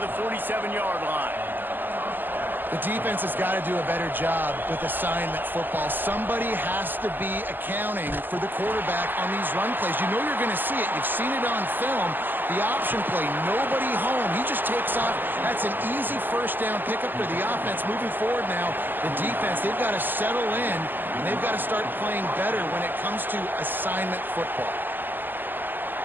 the 47-yard line. The defense has got to do a better job with assignment football. Somebody has to be accounting for the quarterback on these run plays. You know you're going to see it. You've seen it on film. The option play, nobody home. He just takes off. That's an easy first down pickup for the offense. Moving forward now, the defense, they've got to settle in, and they've got to start playing better when it comes to assignment football.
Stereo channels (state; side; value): late; left; 0.090 ms